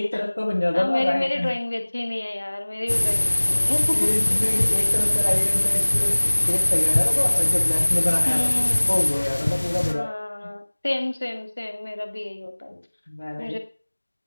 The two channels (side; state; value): both; inverted; correlation -1.00